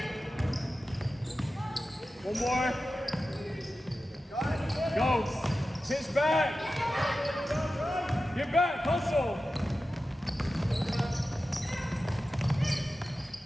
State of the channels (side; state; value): both; normal; correlation 0.93